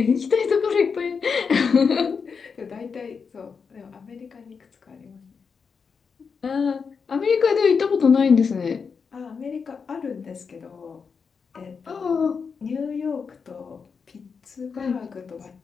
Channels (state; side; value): quieter; right; 5.7 dB